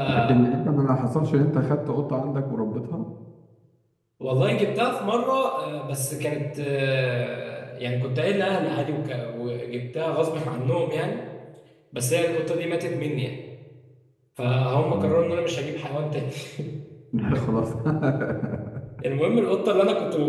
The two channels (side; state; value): both; identical; correlation 1.00